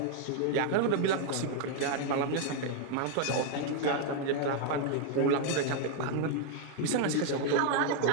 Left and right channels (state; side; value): different; both; correlation 0.00